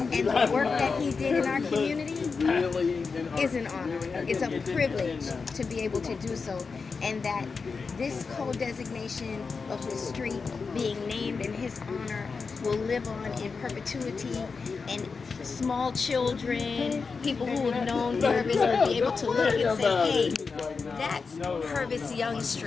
and the work that he did in our community is an honor. It's a privilege to be able to do so, and that this co-designation of the street being named in his honor will live on in perpetuity, and small children, people who have known Purvis will be able to look and say, hey, that's Purvis Young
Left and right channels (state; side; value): quieter; right; 4.9 dB